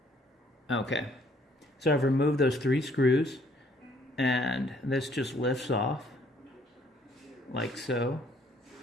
Okay, so I've removed those 3 screws and this just lifts off like so.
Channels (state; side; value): normal; both; correlation 0.63